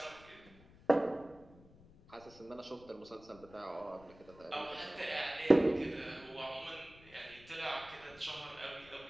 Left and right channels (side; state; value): left; noise; rumble, 23 dB below the sound